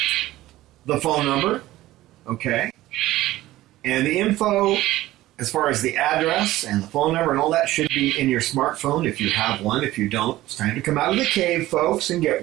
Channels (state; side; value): quieter; left; 16.2 dB